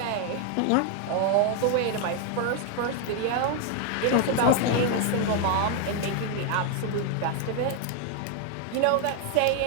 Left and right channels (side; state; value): both; different; correlation 0.00